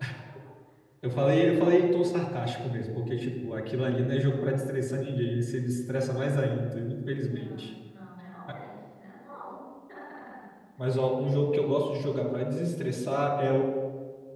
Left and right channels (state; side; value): identical; both; correlation 1.00